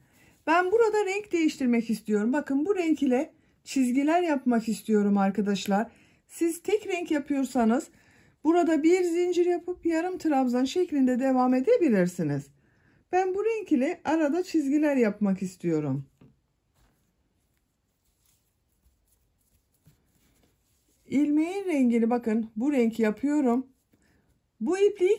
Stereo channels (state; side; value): identical; both; correlation 1.00